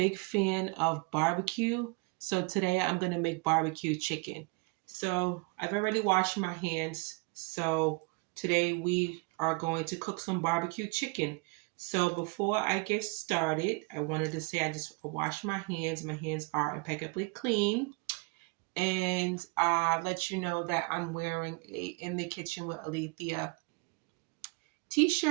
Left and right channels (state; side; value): quieter; left; 30.1 dB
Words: fan of barbecue, so today I'm going to make barbecue chicken. So I've already washed my hands, so today we are going to cook some barbecue chicken. So before I get started, I wanted to say I washed my hands. My hands are impeccably clean, and let you know that I'm wearing a In the Kitchen with Alethea